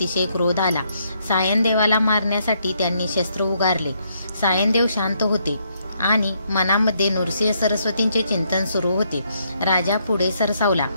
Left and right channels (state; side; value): inverted; both; correlation -0.74